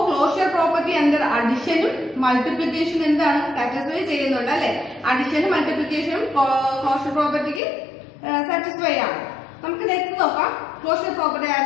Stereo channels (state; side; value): drops out; right; at 7.6 s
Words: ക്ലോഷർ പ്രോപ്പർട്ടി അണ്ടർ അഡിഷനും മൾട്ടിപ്ലിക്കേഷനും എന്താണ്, സാറ്റിസ്ഫൈ ചെയ്യുന്നുണ്ട് അല്ലെ. അഡിഷനും മൾട്ടിപ്ലിക്കേഷനും ക്ലോഷർ പ്രോപ്പർട്ടിക്ക് സാറ്റിസ്ഫൈ ആണ്. നമുക്ക് നെക്സ്റ്റ് നോക്കാം, ക്ലോഷർ പ്രോപ്പർട്ടി